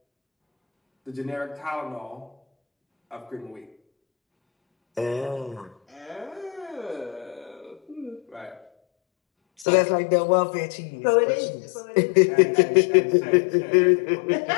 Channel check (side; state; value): right; drops out; at 9.7 s